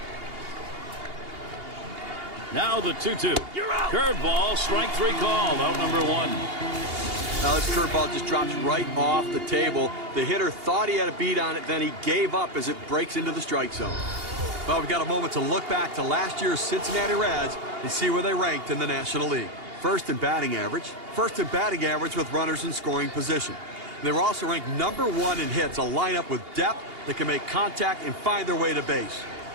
Now the 2-2. Curveball, strike 3 called. Out number 1. Now this curveball just drops right off the table. The hitter thought he had a beat on it, then he gave up as it breaks into the strike zone. Well, we've got a moment to look back to last year's Cincinnati Reds and see where they ranked in the National League. First in batting average with runners in scoring position. They were also ranked #1 in hits, a lineup with depth that can make contact and find their way to base.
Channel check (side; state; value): left; late; 2.8 ms